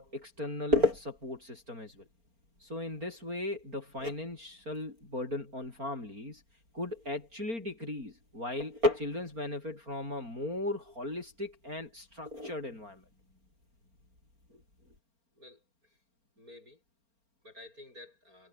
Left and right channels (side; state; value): left; late; 4.4 ms